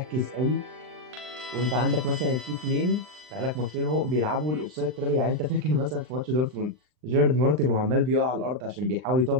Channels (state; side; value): late; left; 39 ms